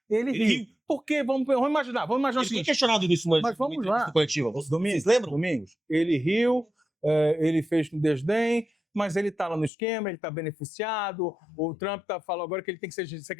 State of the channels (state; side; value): drops out; right; at 9.7 s